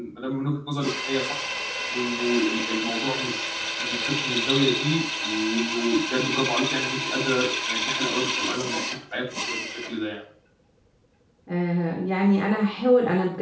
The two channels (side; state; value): both; identical; correlation 1.00